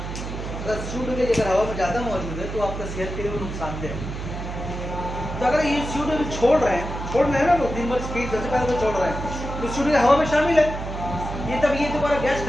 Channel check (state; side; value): noise; right; hum, 7 dB below the sound